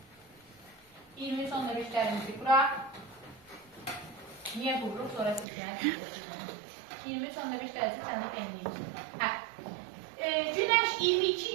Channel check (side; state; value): left; drops out; at 5.5 s